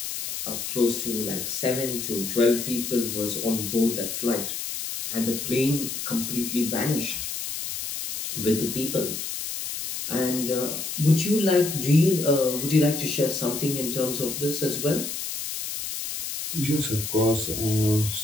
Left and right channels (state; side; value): noise; left; hiss, 5 dB below the sound